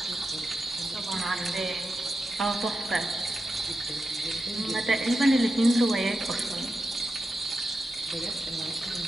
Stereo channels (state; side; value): normal; both; correlation 0.89